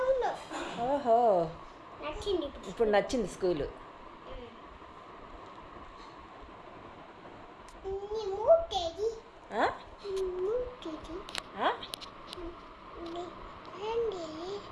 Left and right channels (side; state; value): both; identical; correlation 1.00